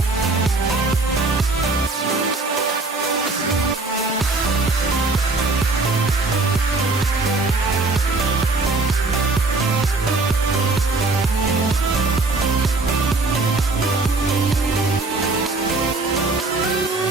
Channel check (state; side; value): quieter; left; 3.5 dB